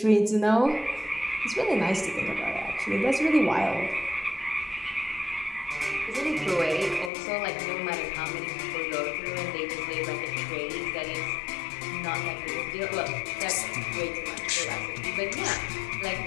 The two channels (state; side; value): drops out; right; at 7.1 s